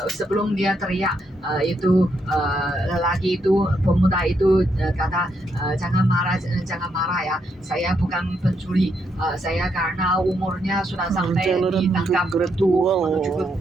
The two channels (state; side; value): normal; both; correlation 0.78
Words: sebelum dia teriak, itu lelaki itu, pemuda itu kata, jangan marah ya, saya bukan pencuri. Saya karena umurnya sudah sampai ditangkap menuju ke